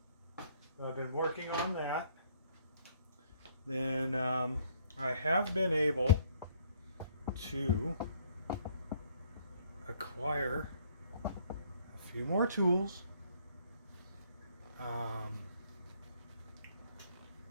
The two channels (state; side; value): inverted; both; correlation -0.63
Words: I've been working on that. Then I have been able to acquire a few more tools.